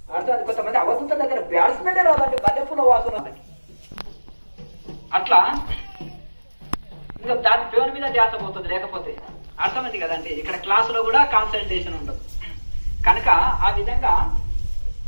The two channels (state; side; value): inverted; both; correlation -1.00